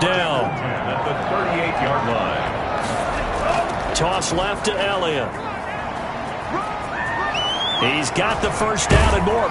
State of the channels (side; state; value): both; identical; correlation 1.00